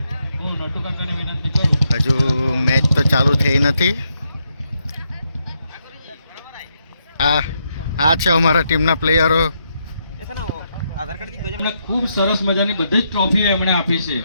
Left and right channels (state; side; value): inverted; both; correlation -0.79